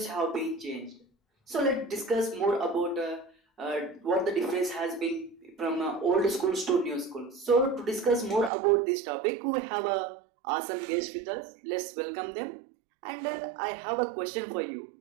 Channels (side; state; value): left; drops out; at 8.5 s